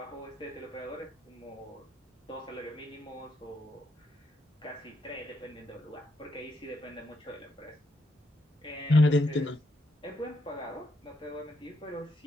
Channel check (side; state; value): both; normal; correlation 0.78